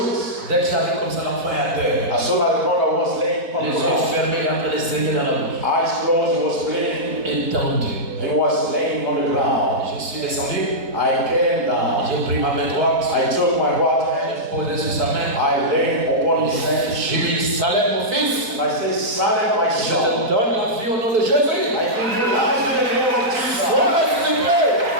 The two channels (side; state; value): left; late; 4.5 ms